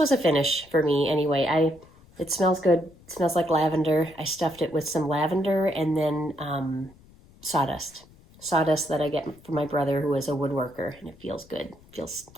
a finish for me anyway. It smells good. It smells like lavender. I stuffed it with some lavender and then sawdust that I get from my brother, who is a woodworker, and it feels good. It feels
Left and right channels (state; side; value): noise; left; rumble, 26 dB below the sound